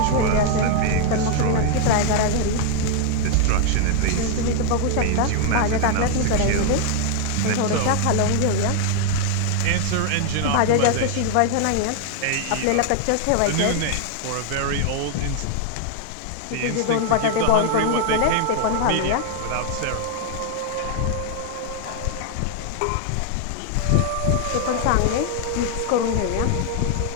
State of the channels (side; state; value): both; different; correlation 0.00